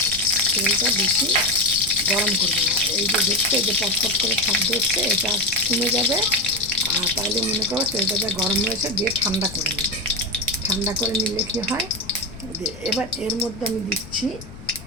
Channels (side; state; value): left; noise; rumble, 16 dB below the sound